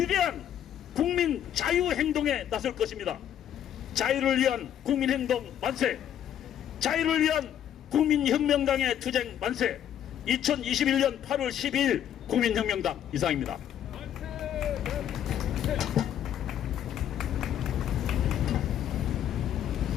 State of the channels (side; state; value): right; quieter; 10.2 dB